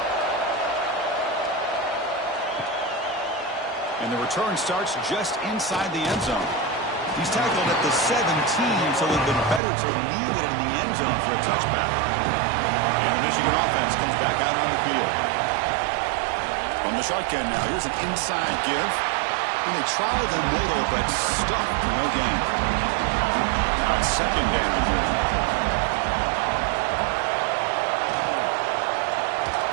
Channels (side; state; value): left; drops out; at 9.6 s